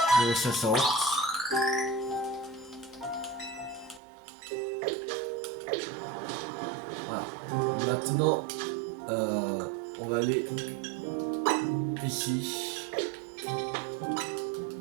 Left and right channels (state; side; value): drops out; left; at 4.0 s